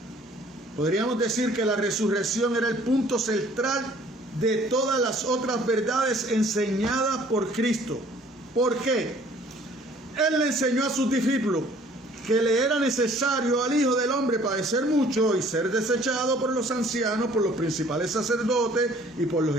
Podríamos decir que la resurrección era el punto central de todas las otras verdades enseñadas por Cristo. ¿Por qué? Él le enseñó a sus discípulos que le era necesario al Hijo del Hombre padecer mucho y ser desechado por los ancianos, por los principales sacerdotes y por los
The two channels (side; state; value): both; normal; correlation 0.56